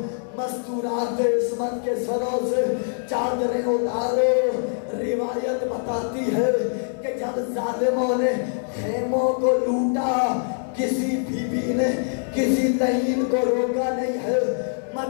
مستورات عصمت کے سروں سے چادریں اتارو۔ روایت بتاتی ہے کہ جب ظالموں نے خیموں کو لوٹا، کسی بیوی نے کسی لہین کو روکا نہیں ہے،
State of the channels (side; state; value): right; silent; digital silence